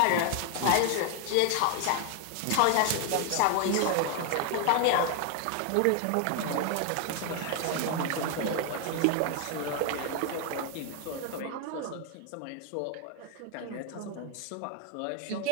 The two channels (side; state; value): both; different; correlation 0.00